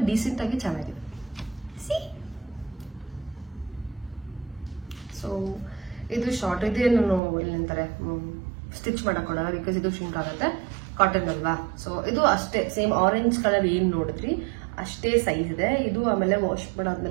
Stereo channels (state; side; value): drops out; left; at 7.2 s